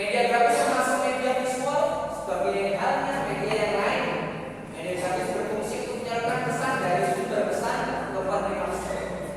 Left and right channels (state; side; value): identical; both; correlation 1.00